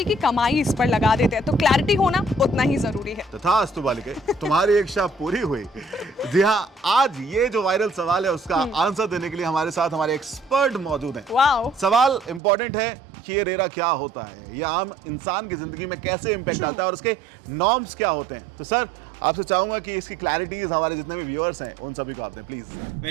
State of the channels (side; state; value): left; drops out; at 12.4 s